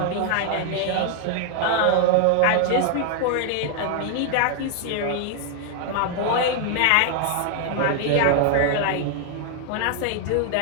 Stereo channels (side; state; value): both; different; correlation 0.00